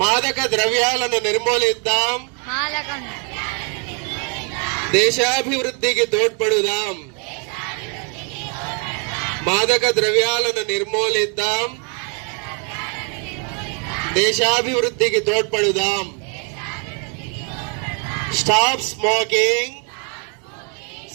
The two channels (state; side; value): quieter; left; 38.5 dB